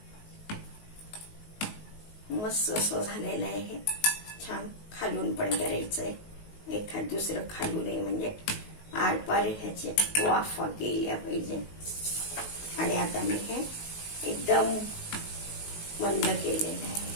मस्त असं झालेलं आहे हे छान. खालून पण करायचंय, एखाद दुसरं खालून म्हणजे आरपार ह्याचे वाफा गेल्या पाहिजे. आणि आता मी हे एकदम मंद केलेलं आहे.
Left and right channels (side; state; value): right; late; 19 ms